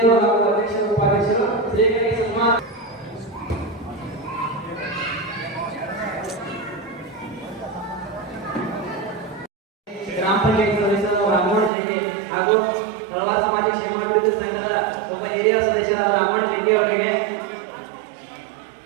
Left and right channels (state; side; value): drops out; left; at 11.7 s